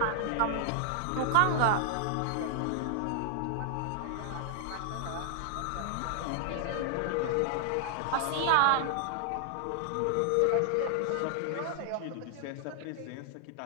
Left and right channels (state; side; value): different; both; correlation 0.00